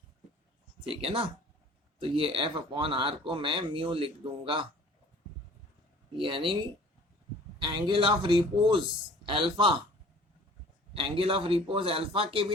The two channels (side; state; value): both; normal; correlation 0.49